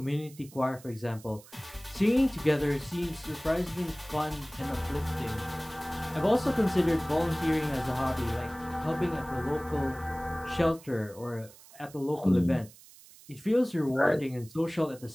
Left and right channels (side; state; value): right; noise; hiss, 22 dB below the sound